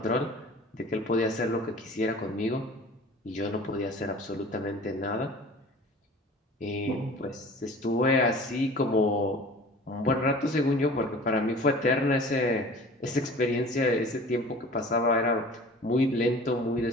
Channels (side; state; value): both; normal; correlation 0.43